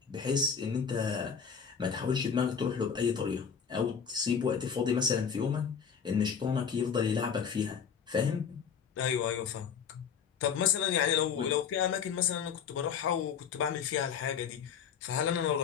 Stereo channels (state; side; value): quieter; right; 7.0 dB